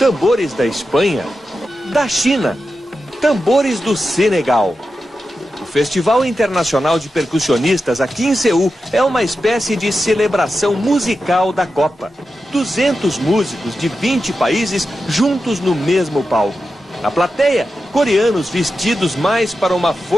da Espanha, da China, tambores do Senegal. O Festival Internacional de Percussionistas aqui em Seul é uma espécie de celebração musical da Copa. 200 músicos de 20 países juntos no mesmo palco. Na plateia, coreanos vestidos mais para uma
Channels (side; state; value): both; normal; correlation 0.91